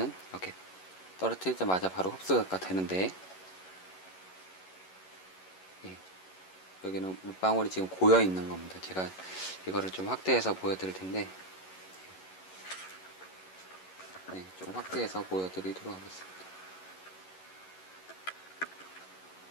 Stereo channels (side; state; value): right; late; 11 ms